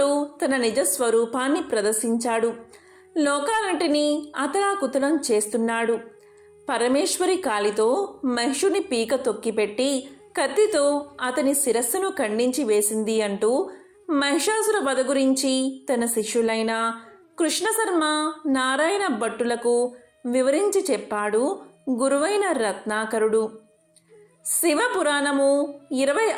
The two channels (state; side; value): identical; both; correlation 1.00